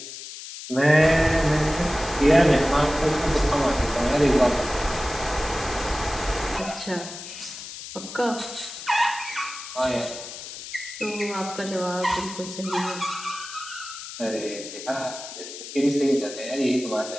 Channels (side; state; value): left; noise; hiss, 11 dB below the sound